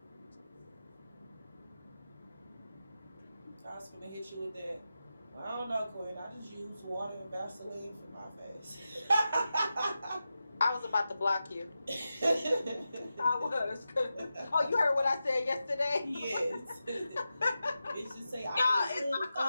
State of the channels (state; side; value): inverted; both; correlation -0.91